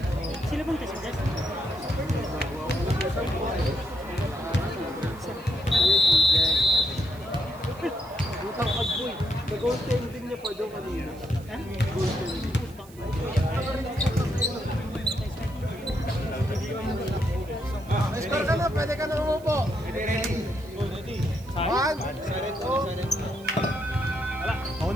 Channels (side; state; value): right; noise; hiss, 24 dB below the sound